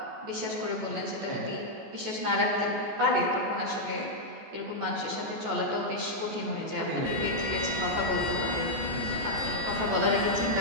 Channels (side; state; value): left; late; 14 ms